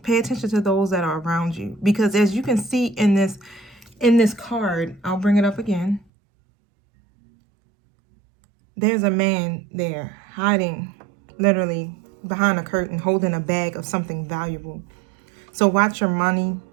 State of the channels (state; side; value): drops out; left; at 6.1 s